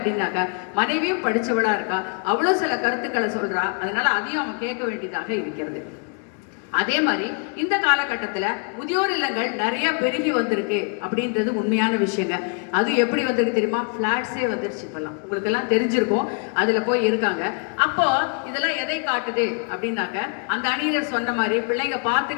மனைவியும் படிச்சவளா இருக்கா, அவ்வளவு சில கருத்துக்களை சொல்றா, அதனால அதையும் அவன் கேட்க வேண்டியதாக இருக்கிறது. அதே மாதிரி இந்த காலகட்டத்தில் முதியோர் இல்லங்கள் நிறைய பெருகி வந்திருக்கு அப்படின்றது உண்மையான விஷயங்க. அது எப்படி வந்திருக்கு தெரியுமா? ஃப்ளாட்ஸே வந்துருச்சு இப்பெல்லாம், உங்களுக்கு எல்லாம் தெரிஞ்சிருக்கும். அதுல போய் இருக்காங்க. அப்போ இதெல்லாம் எதை காட்டுது அப்படின்னாக்க, அந்த அணியர் சொன்ன மாதிரி பிள்ளைங்க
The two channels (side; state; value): right; quieter; 38.4 dB